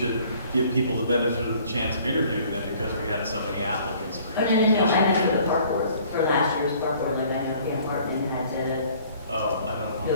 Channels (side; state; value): both; inverted; correlation -0.56